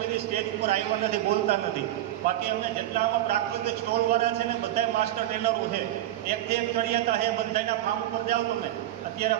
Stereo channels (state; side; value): quieter; left; 13.9 dB